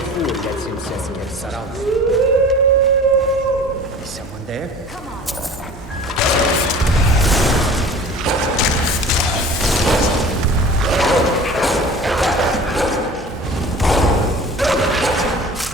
fool lets himself get surrounded. Is someone there? Come on.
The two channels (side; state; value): both; normal; correlation 0.42